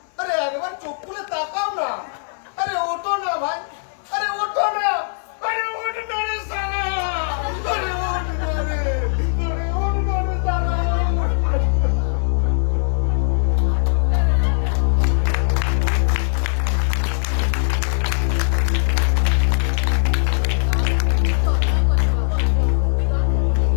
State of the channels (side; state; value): right; silent; 58 dB below the other